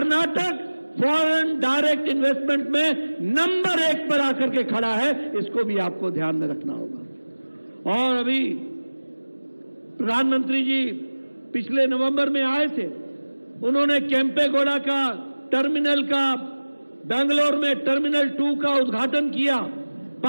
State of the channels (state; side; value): inverted; both; correlation -1.00